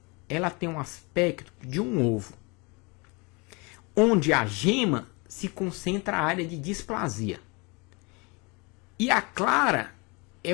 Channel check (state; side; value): quieter; right; 28.8 dB